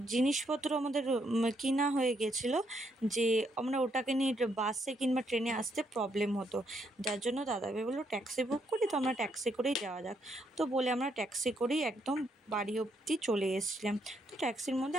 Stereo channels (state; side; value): normal; both; correlation 0.75